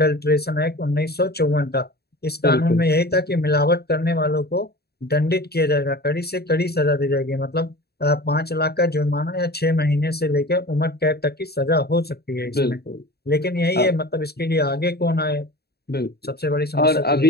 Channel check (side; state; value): right; late; 0.47 ms